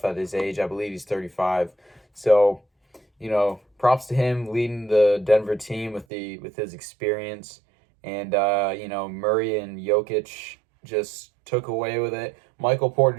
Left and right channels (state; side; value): drops out; left; at 6.1 s